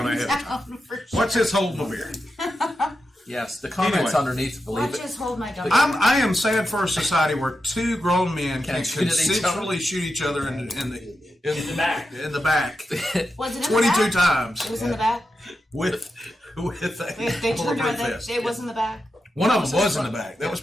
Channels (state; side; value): normal; both; correlation 0.89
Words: ahead of time. down for sure. What's his hold my beer? Yes, the comments Anyway. underneath, believe Watch it. this, hold my gun. I am sad for a society where two grown men can Can't shoot at each other. consensually shoot each other in the back. In the back Was it in 22 the back? times It was in the back. with They a turned bulletproof around. vest. It was in the back. One of them was in the back. That was